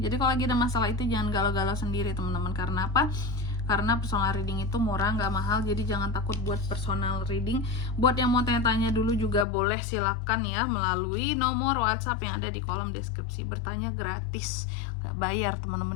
kalau lagi ada masalah itu jangan galau-galau sendiri teman-teman. Karena apa? Karena personal reading itu murah, nggak mahal. Jadi jangan takut buat personal reading. Buat yang mau tanya-tanya dulu juga boleh, silakan ya melalui nomor WhatsApp yang ada di kolom deskripsi. Bertanya gratis, nggak bayar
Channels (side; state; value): right; drops out; at 9.5 s